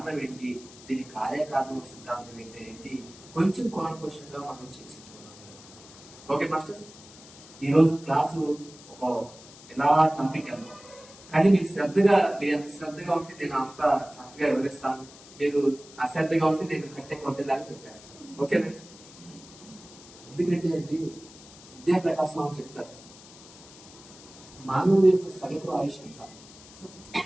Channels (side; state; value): left; noise; hiss, 20 dB below the sound